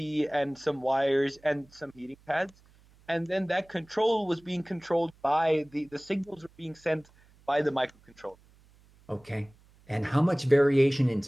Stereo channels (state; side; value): noise; right; hum, 29 dB below the sound